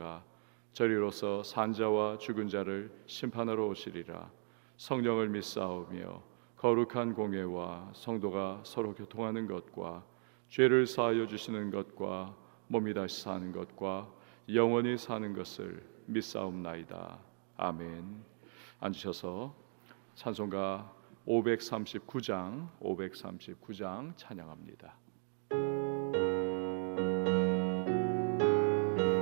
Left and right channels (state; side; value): silent; left; 53 dB below the other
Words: 저리로서 산자와 죽은 자를 심판하러 오시리라. 성령을 믿사오며 거룩한 공예와 성도가 서로 교통하는 것과 죄를 사하여 주시는 것과 몸이 다시 사는 것과 영원히 사는 것을 믿사옵나이다. 아멘. 앉으셔서 찬송가 539장 찬양합니다.